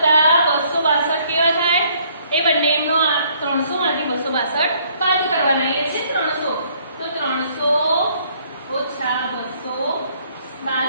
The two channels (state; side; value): inverted; both; correlation -0.64